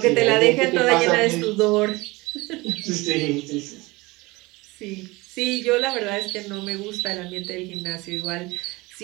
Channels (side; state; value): left; quieter; 22.6 dB